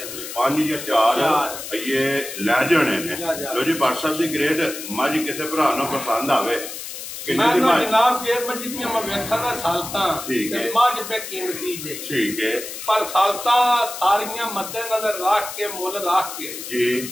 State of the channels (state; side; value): noise; left; hiss, 9 dB below the sound